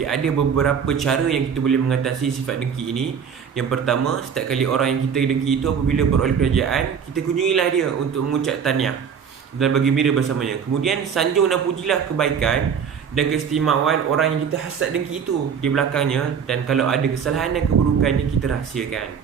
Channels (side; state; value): left; quieter; 7.1 dB